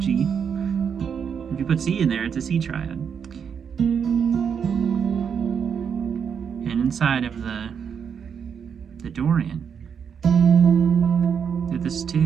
G. If you put C in there, it's a C triad. And inside of the Dorian, if this is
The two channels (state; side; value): quieter; left; 7.1 dB